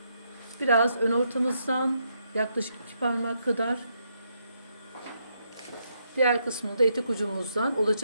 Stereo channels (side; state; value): both; inverted; correlation -0.78